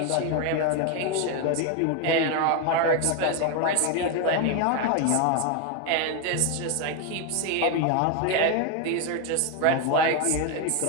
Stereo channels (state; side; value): different; both; correlation 0.02